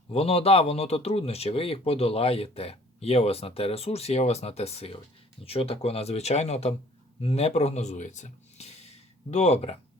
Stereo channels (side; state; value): both; normal; correlation 0.54